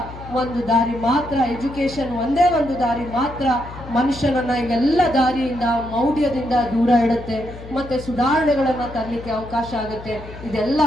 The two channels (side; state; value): left; noise; hum, 14 dB below the sound